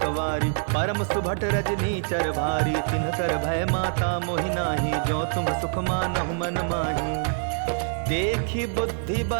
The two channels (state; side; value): silent; left; digital silence